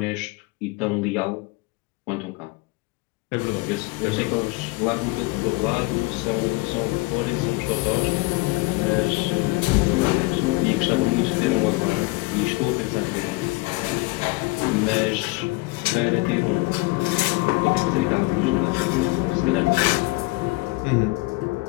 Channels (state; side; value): quieter; right; 23.7 dB